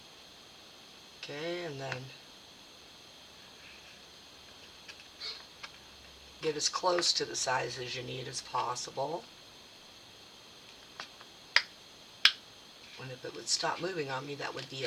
Okay, and then get as close to the size as you need as possible. And if it would stop moving on me, that would be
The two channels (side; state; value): both; identical; correlation 1.00